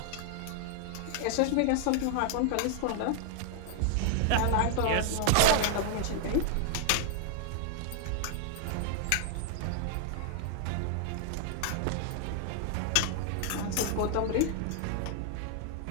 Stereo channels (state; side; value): different; both; correlation 0.00